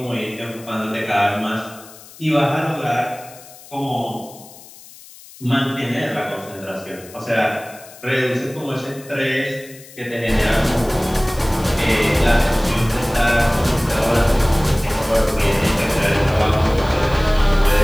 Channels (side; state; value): left; noise; hiss, 20 dB below the sound